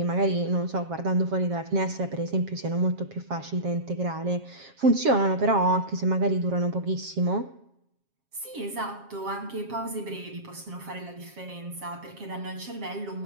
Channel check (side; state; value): left; late; 7.4 ms